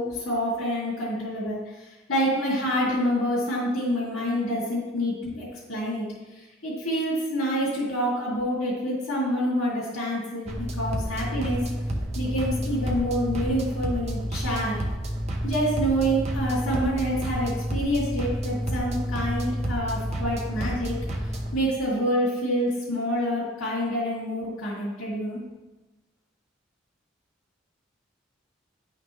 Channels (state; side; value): normal; both; correlation 0.47